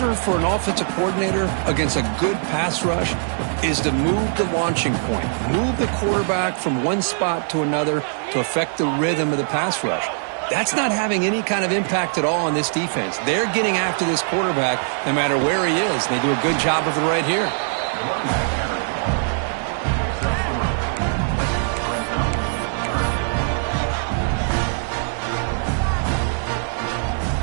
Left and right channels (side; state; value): left; silent; 63 dB below the other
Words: for an offensive coordinator against a good pass rush is to move the launching point. Move the quarterback from one spot to another to affect the rhythm of the pass rush. That's not having any kind of impact at all on this defense. They're getting after this quarterback no matter where he is. They do a good job of it right here.